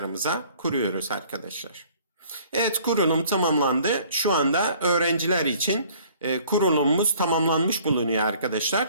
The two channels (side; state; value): both; inverted; correlation -0.55